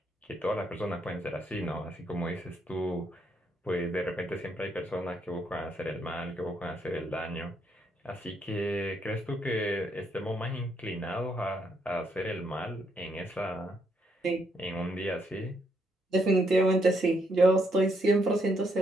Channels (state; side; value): normal; both; correlation 0.75